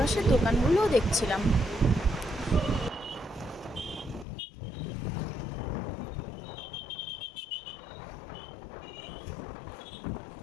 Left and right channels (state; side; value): drops out; right; at 4.2 s